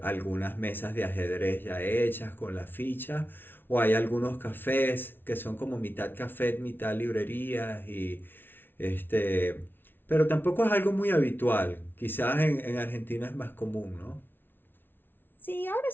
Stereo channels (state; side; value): late; right; 0.10 ms